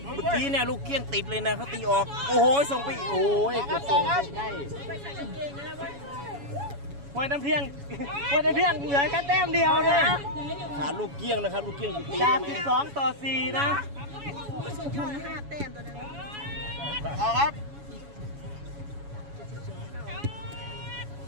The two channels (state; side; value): late; left; 7.1 ms